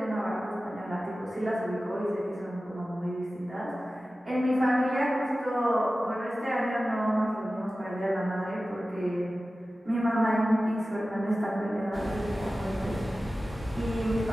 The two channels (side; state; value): both; normal; correlation 0.95